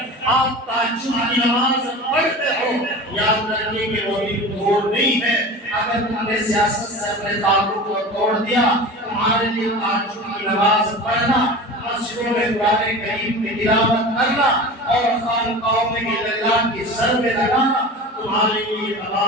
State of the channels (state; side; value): normal; both; correlation 0.33